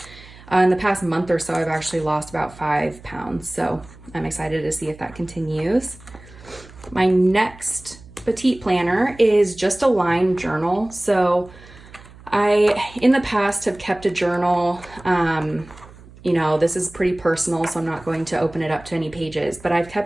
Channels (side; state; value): right; noise; hum, 21 dB below the sound